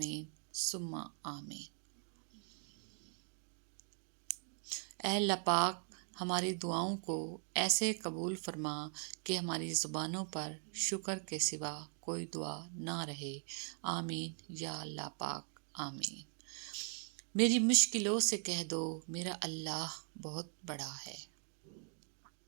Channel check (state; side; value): silent; left; 51 dB below the other